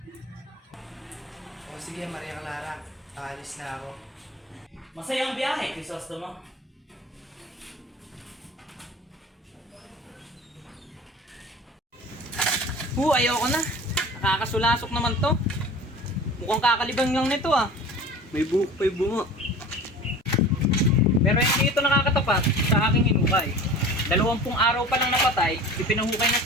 O sige, Maria Clara. Aalis na ako. Masayang biyahe, Crisostomo. Ayoko na. Nakakasulasok naman to. Mukhang kakalibang lang nito ah. May buhok pa yung bunga. Pero hindi ito nakakatapat sa aking hinukay. 20 araw pa lang napatay, ipinahukay na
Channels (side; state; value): both; normal; correlation 0.39